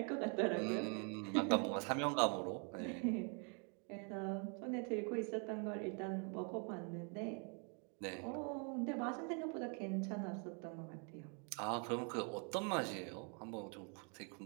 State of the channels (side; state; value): left; quieter; 38.3 dB